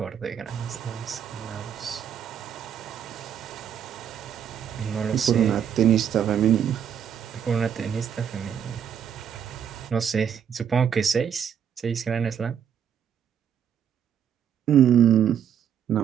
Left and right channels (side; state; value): left; quieter; 8.5 dB